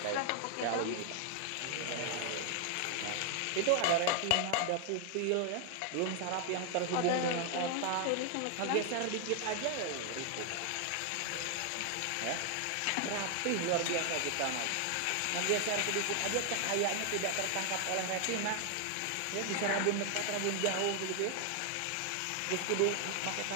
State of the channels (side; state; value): both; different; correlation 0.00